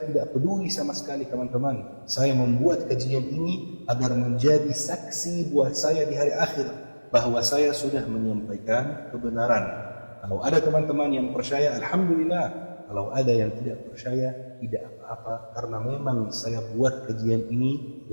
tidak peduli sama sekali teman-teman. Saya membuat kajian ini agar menjadi saksi buat saya di hari akhir bahwa saya sudah menyampaikan kebenaran. Kalau ada teman-teman yang percaya, alhamdulillah. Kalau ada yang tidak percaya, tidak apa-apa, karena memang saya buat kajian ini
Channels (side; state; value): both; inverted; correlation -1.00